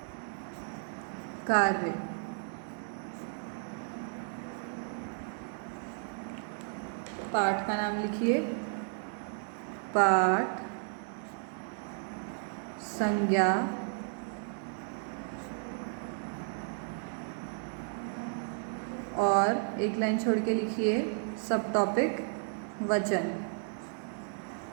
कार्य. पाठ का नाम लिखिए. पाठ संज्ञा और एक लाइन छोड़ के लिखिए सब टॉपिक वचन.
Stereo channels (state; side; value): silent; left; 55 dB below the other